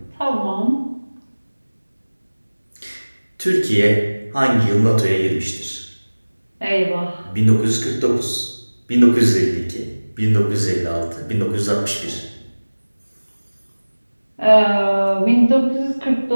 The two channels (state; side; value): inverted; both; correlation -1.00